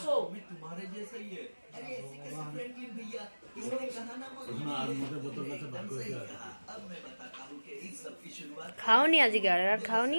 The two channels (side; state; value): both; inverted; correlation -1.00